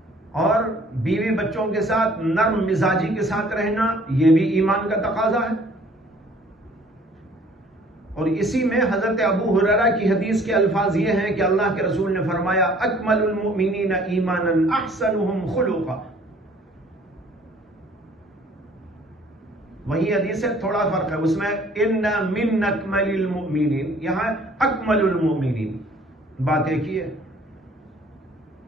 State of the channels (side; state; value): both; normal; correlation 0.56